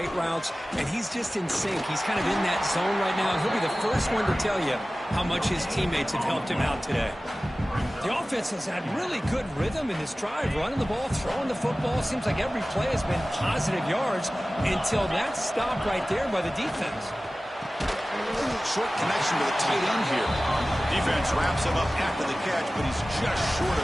routes, and he's just in sync. He's kind of in that zone right now. He'll be the first one to tell you how much his teammates have helped him out today. The offense has had really good rhythm in this drive, running the ball, throwing the football. Seems like every play has been positive yards until that stop right there by the defense. Short connection to the tight end here. Defense wraps him up after the catch, but he's just short of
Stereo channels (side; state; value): both; normal; correlation 0.97